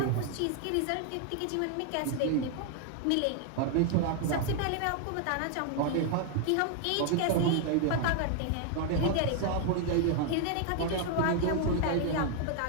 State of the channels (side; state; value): both; different; correlation 0.00